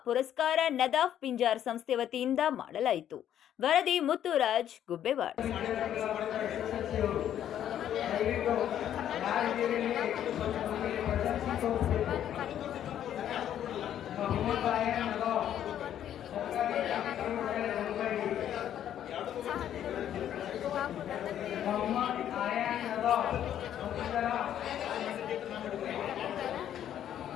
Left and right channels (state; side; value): quieter; right; 10.6 dB